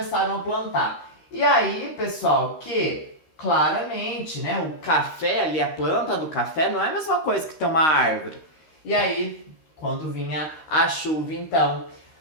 a plantar. E aí, pessoal, que claramente, né, o café ali, a planta do café não é a mesma coisa que ter uma árvore. E aí, quando vinha a chuva, então,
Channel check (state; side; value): late; right; 13 ms